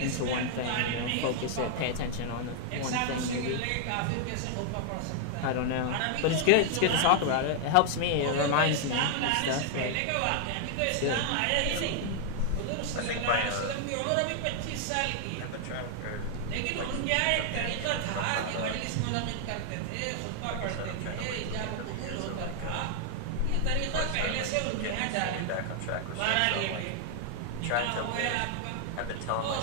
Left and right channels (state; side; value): different; both; correlation 0.00